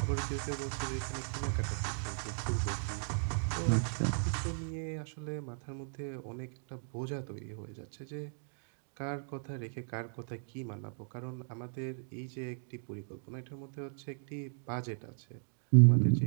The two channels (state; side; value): silent; left; digital silence